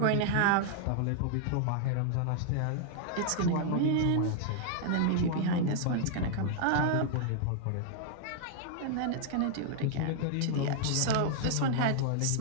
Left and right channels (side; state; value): both; different; correlation 0.00